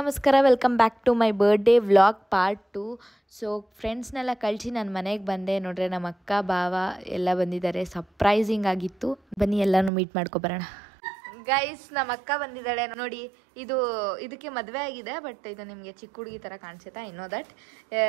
welcome back to my birthday vlog part 2. So ಫ್ರೆಂಡ್ಸ್ನೆಲ್ಲ ಕಳಿಸಿ ನಾನು ಮನೆಗೆ ಬಂದೆ. ನೋಡ್ರೆ ನಮ್ಮ ಅಕ್ಕ ಭಾವ ಎಲ್ಲ ಬಂದಿದ್ದಾರೆ, ಸರ್ಪ್ರೈಸಿಂಗ್ ಆಗಿತ್ತು. ಬನ್ನಿ ಎಲ್ಲನೂ ಮೀಟ್ ಮಾಡ್ಕೊಬರೋಣ. ಗೈಸ್, ನಮ್ಮ ಅಕ್ಕ ಬಂದಿದ್ದಾಳೆ ನೋಡಿ. ಇದಕ್ಕೆ ಮದುವೆ ಆಗಿದೆ, ಬಟ್ ಇದು ನಿಮಗೆ ಚಿಕ್ಕ ಹುಡುಗಿ ಥರ ಕಾಣಿಸುತ್ತಾ? ಇನ್ನೋ ದಟ್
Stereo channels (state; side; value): drops out; left; at 9.9 s